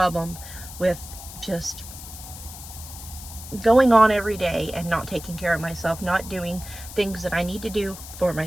with just going on every day and not taking care of myself, not doing things that I need to do for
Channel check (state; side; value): noise; left; hiss, 13 dB below the sound